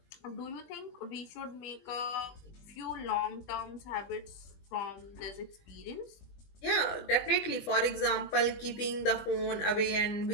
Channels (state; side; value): late; right; 20 ms